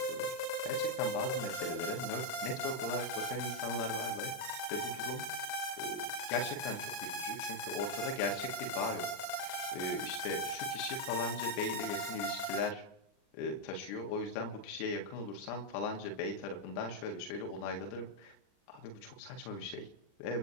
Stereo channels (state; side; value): late; right; 39 ms